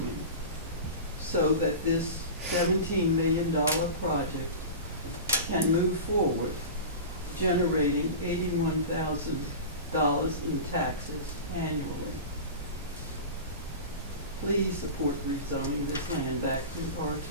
so that this $17 million project can move forward, generating $81,000 in taxes annually. Please support rezoning this land back to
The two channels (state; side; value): inverted; both; correlation -0.30